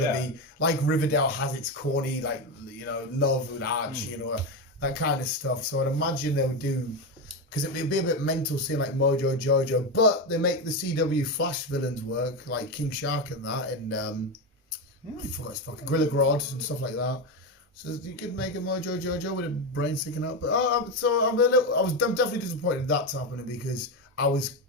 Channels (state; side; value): normal; both; correlation 0.13